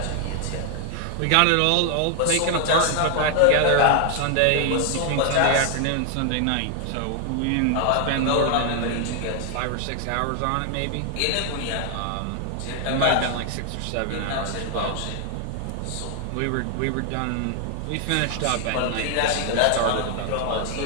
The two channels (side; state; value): both; different; correlation 0.00